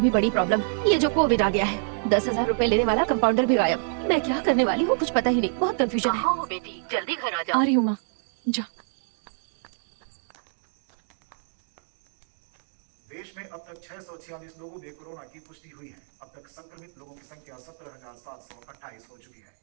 भी बड़ी प्रॉब्लम ये जो कोविड आ गया है। 10,000 रुपए लेने वाला कंपाउंडर भी गायब। मैं क्या करने वाली हूँ कुछ पता ही नहीं, बहुत कंफ्यूजन है। हो बेटी, जल्दी घर आ आ रही हूँ माँ, जा। देश में अब तक 646 लोगों में कोरोना की पुष्टि हुई है। अब तक संक्रमित लोगों की संख्या 17,728 हो चुकी है।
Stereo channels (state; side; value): silent; left; digital silence